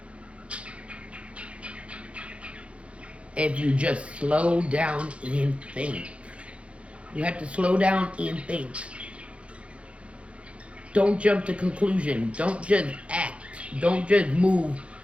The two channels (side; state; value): left; late; 0.061 ms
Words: If you just slow down and think. You have to slow down and think. Don't jump to conclusion. Don't just act. Don't just move